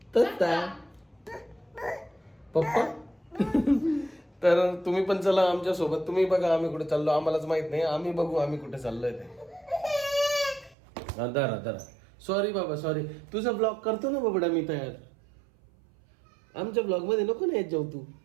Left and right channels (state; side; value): drops out; left; at 10.8 s